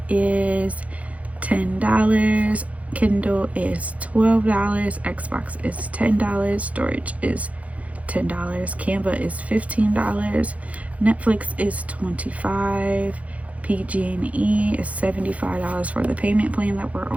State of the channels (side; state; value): left; late; 0.067 ms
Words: is $10. Kindle is $12. Xbox is $10. Storage is $10. Canva is $15. Netflix is $25. PG&E is $75 for the payment plan that we're